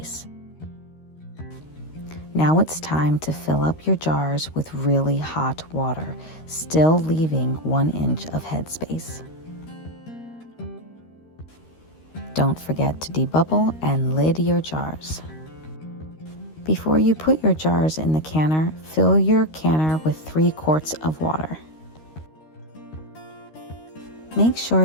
Now it's time to fill up your jars with really hot water, still leaving 1 inch of headspace. Don't forget to debubble and lid your jars. Before you put your jars in the canner, fill your canner with 3 quarts of water. Make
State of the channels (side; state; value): right; late; 13 ms